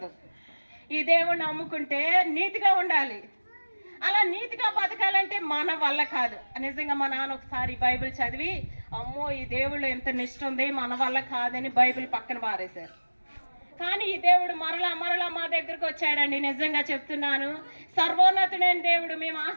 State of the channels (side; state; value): both; inverted; correlation -1.00